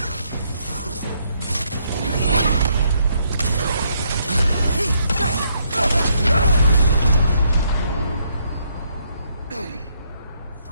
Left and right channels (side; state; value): both; inverted; correlation -0.73